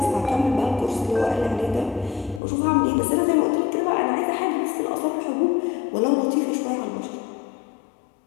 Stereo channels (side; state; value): right; drops out; at 2.4 s